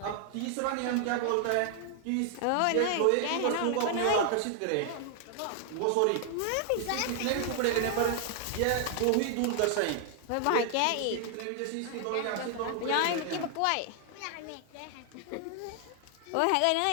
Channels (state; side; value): different; both; correlation 0.00